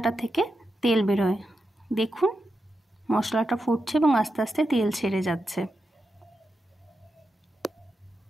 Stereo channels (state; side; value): normal; both; correlation 0.88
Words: থেকে তেল বেরোয়। দেখুন মশলাটা ফুটছে এবং আস্তে আস্তে তেল ছেড়ে যাচ্ছে।